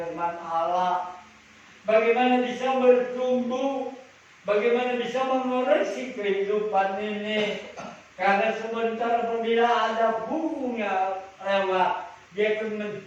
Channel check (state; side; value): identical; both; correlation 1.00